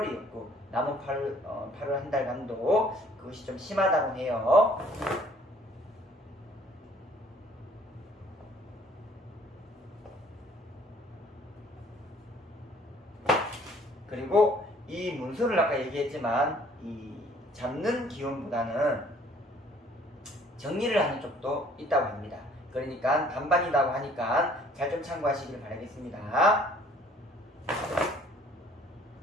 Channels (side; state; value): both; normal; correlation 0.58